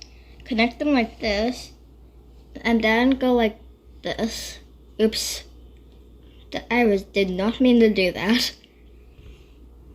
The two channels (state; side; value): identical; both; correlation 1.00